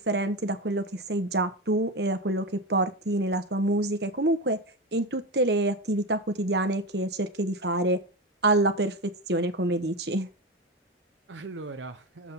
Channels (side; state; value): both; normal; correlation 0.19